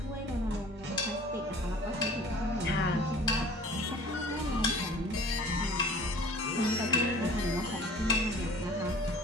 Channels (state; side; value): normal; both; correlation 0.47